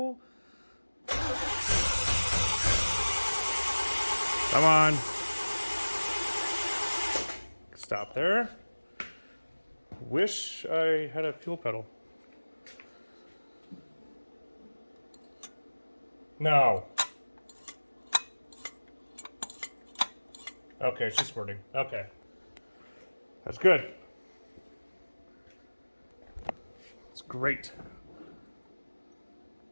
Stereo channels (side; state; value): both; inverted; correlation -1.00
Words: come on. Stop there. Wish I had a fuel pedal. No. Okay, it's just squirting. Okay. That's good. It's great.